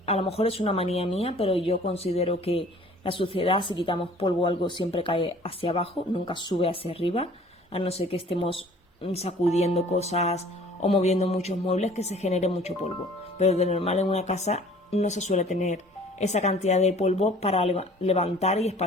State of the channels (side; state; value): both; normal; correlation 0.51